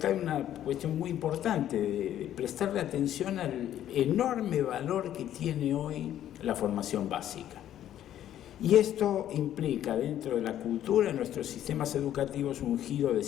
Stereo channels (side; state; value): right; quieter; 11.5 dB